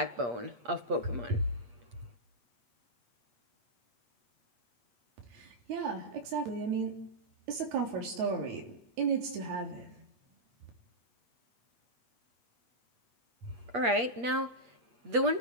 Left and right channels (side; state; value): left; late; 8.4 ms